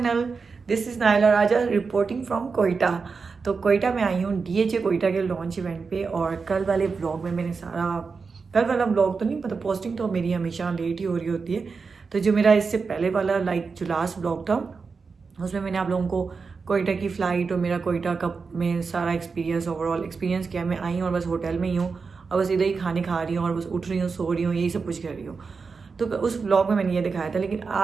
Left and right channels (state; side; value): quieter; left; 4.9 dB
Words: This is Naila Raja reporting from Quetta. तो कोयटा में आई हूँ डीएचए कोयटा के लॉन्च इवेंट पे। और कल वाले व्लॉग में मैंने सारा, कल वाला व्लॉग तो नहीं, मतलब पोस्टिंग तो मेरी हमेशा लेट ही हो रही होती है। तो जो मेरा इससे पहले वाला जो लास्ट व्लॉग था उसमें मैंने आप लोगों को कोयटा की फ़्लाइट और मेरा कोयटा कप में सारा एक्सपीरियंस, ओवरऑल एक्सपीरियंस किया। मैं आई हूँ और बस होटल में ही हूँ और बस इधर ही खाने खा रही हूँ और बस उठ रही हूँ, सो रही हूँ, यही सब कुछ कर रही हूँ। तो उस ब्लॉग में मैंने ये दिखाया था, लेकिन